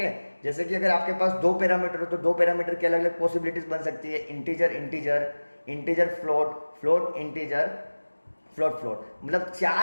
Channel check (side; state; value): both; inverted; correlation -1.00